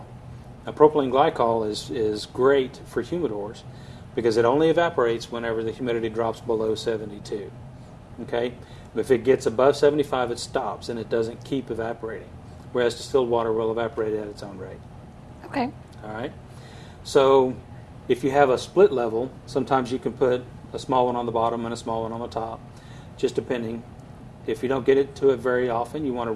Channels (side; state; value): both; identical; correlation 1.00